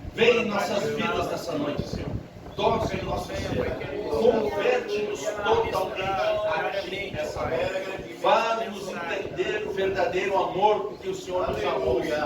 vem em nossas vidas nessa noite, Senhor. Toca em nosso ser, converte-nos totalmente a Ti nessa noite. Faz-nos entender o verdadeiro amor que o Senhor nos amou.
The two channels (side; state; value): both; identical; correlation 1.00